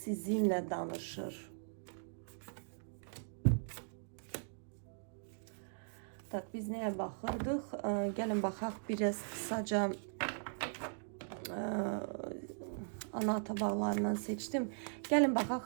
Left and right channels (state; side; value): silent; left; digital silence